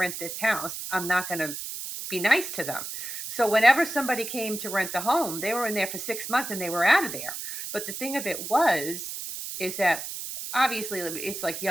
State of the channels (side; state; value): right; noise; hiss, 7 dB below the sound